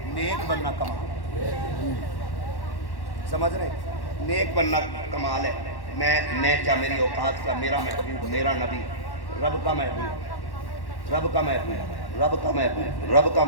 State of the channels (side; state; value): right; late; 1.1 ms